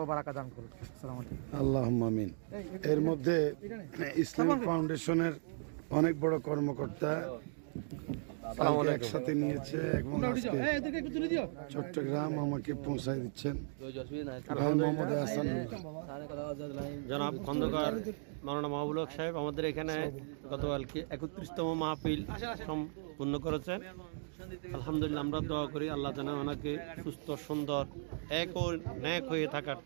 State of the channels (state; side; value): silent; left; digital silence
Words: বারাকা দান করুন। আসসালামু আলাইকুম। আল্লাহুম্মা আমিন। এর মধ্যে ইসলামিক ফাউন্ডেশনের অনেক বড় কর্মকর্তা একসাথে নিয়েছে এবং আজকে চট্টগ্রাম আমাকে পৌঁছায় দিচ্ছেন ভাই মোহাম্মদ হাসান। জনাব খন্দকার মাওলানা মাহবুবুল হক সাহেব আমাদের এখানে গতকালকে 31তম মাহফিল সম্পূর্ণ করেছেন। আলহামদুলিল্লাহ আমরা দোয়া করি আল্লাহ যেন ওনাকে সুস্থ সুন্দর এক ও ন্যাক হয়ে থাকার